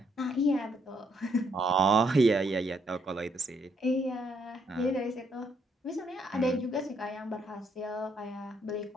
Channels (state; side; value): normal; both; correlation 0.72